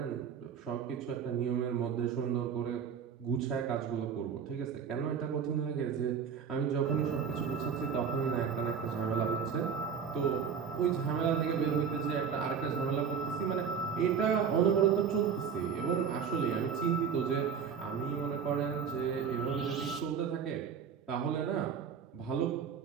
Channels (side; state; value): left; quieter; 7.0 dB